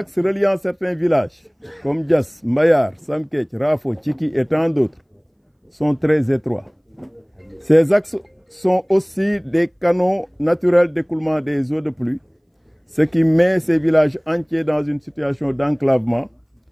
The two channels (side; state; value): both; identical; correlation 1.00